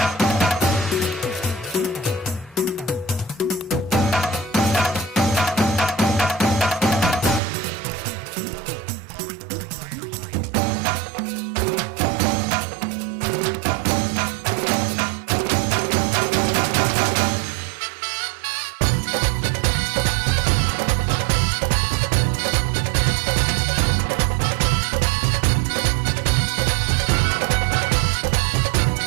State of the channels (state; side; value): drops out; left; at 7.4 s